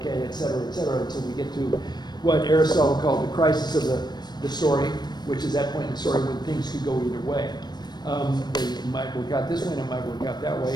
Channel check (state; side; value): late; right; 0.20 ms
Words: et cetera, until we get to what Aristotle called the crisis of the story, which is that point in the story when things could go either way. They might work out this way and it might work out that